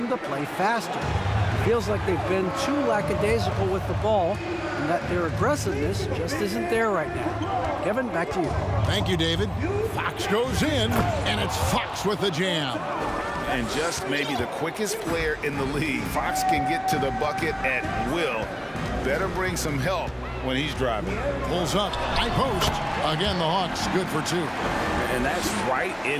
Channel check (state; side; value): identical; both; correlation 1.00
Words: to play faster. It feels like they've been too lackadaisical with the ball, and that their aggressiveness just isn't there right now. Kevin, back to you. Thank you, David. Fox goes in, and it's Fox with the jam. And just maybe the quickest player in the league. Fox can get to the bucket at will. Better bring some help when he's driving. Pulls up, high post. Again, the Hawks good for 2. And that's right in